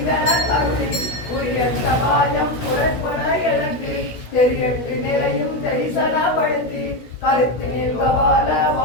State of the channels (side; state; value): right; late; 16 ms